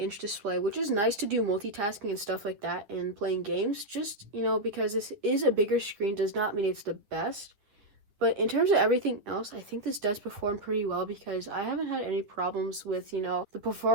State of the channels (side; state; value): left; late; 9.5 ms